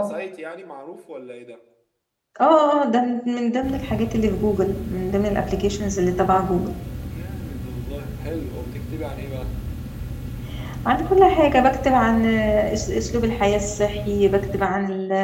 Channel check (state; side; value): identical; both; correlation 1.00